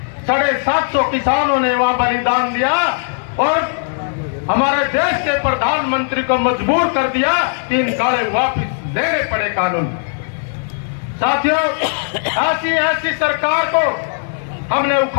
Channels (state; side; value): silent; right; digital silence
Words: 750 किसानों ने वहां बलिदान दिया और हमारे देश के प्रधानमंत्री को मजबूर कर दिया कि इन काले वापस लेने पड़े कानून। साथियों, ऐसी सरकार को हमने